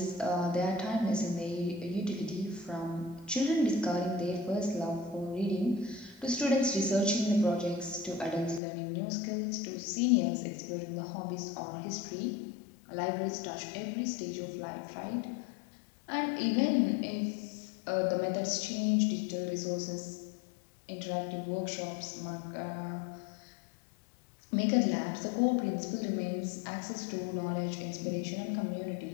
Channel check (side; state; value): right; drops out; at 8.6 s